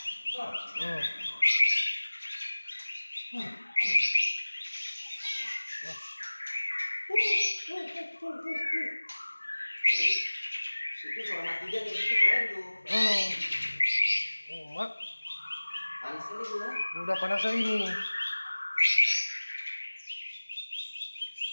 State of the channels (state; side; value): inverted; both; correlation -1.00